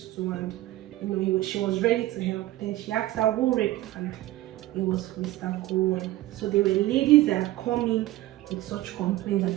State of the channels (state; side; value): quieter; left; 16.3 dB